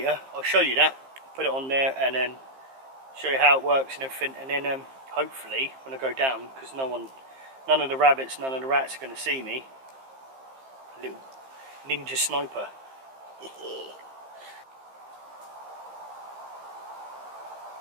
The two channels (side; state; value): left; late; 15 ms